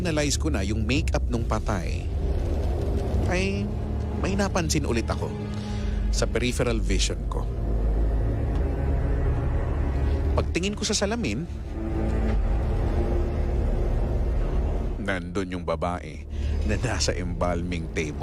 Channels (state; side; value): identical; both; correlation 1.00